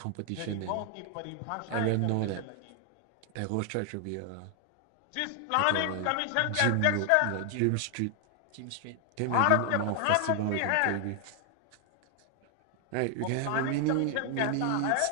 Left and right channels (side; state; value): both; different; correlation 0.00